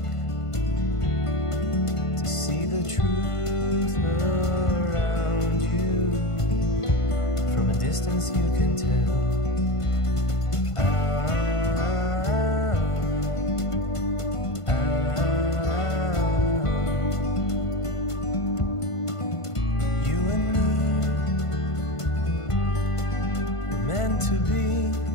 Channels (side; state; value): right; late; 1.5 ms